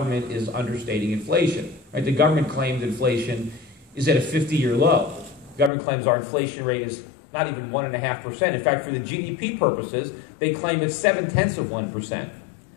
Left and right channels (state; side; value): drops out; right; at 5.7 s